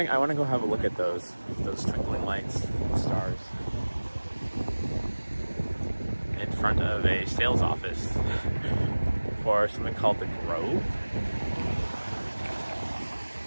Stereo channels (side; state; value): both; inverted; correlation -1.00